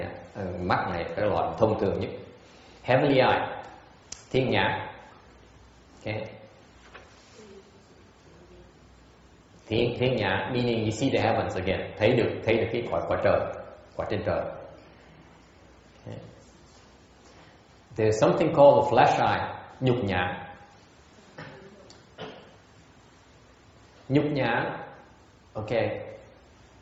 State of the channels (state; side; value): identical; both; correlation 1.00